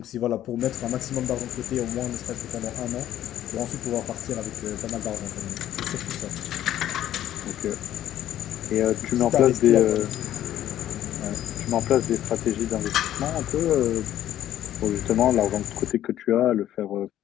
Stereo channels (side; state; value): right; quieter; 12.2 dB